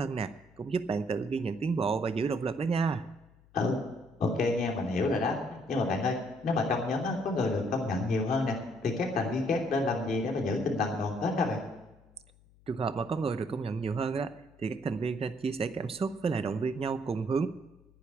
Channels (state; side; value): noise; left; hum, 28 dB below the sound